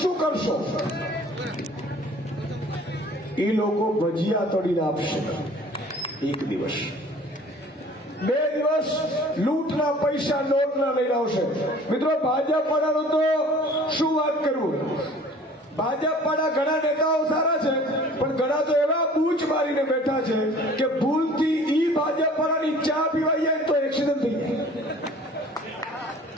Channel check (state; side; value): normal; both; correlation 0.49